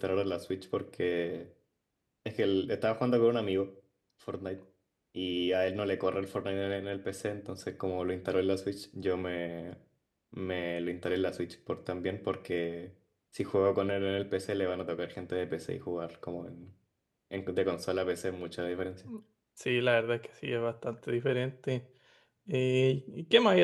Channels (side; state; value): both; identical; correlation 1.00